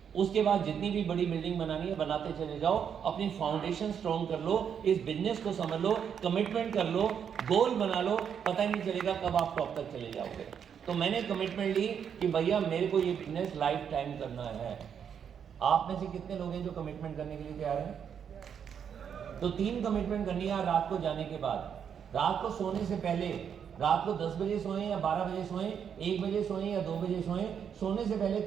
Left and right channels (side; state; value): left; quieter; 7.8 dB